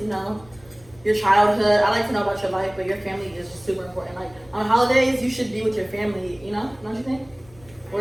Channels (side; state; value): left; noise; rumble, 26 dB below the sound